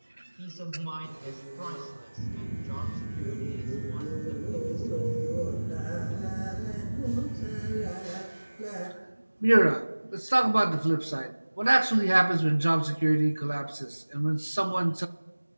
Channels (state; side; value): inverted; both; correlation -1.00